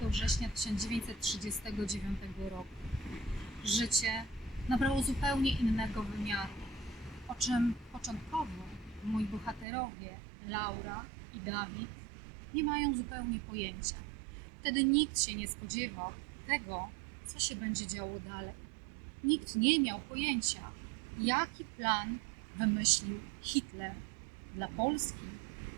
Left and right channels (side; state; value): left; drops out; at 9.7 s